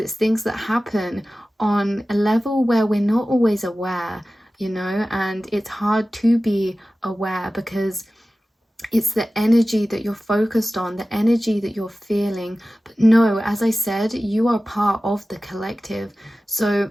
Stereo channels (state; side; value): normal; both; correlation 0.95